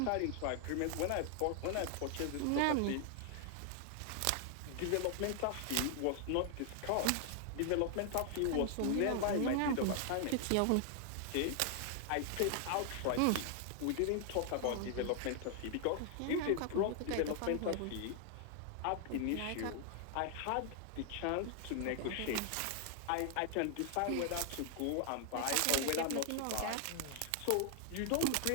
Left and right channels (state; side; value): different; both; correlation 0.00